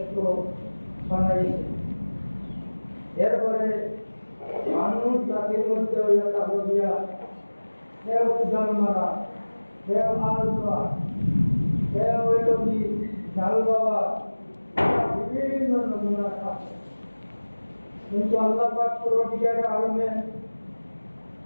বানাইছি। এরপরে মানুষ জাতির মধ্যে হইল তাহলিয়া, কেউ জানমারা, কেউ আলবা, কেউ হইল কি জাল বাবা, বিভিন্ন নমুনা আছে। কিন্তু আল্লাহ পাক পরবর্তীকার আলমে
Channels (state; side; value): inverted; both; correlation -1.00